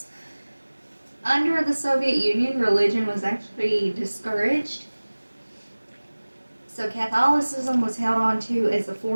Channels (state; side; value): inverted; both; correlation -1.00